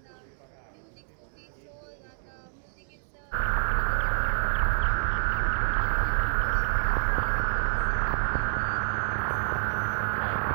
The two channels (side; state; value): left; silent; digital silence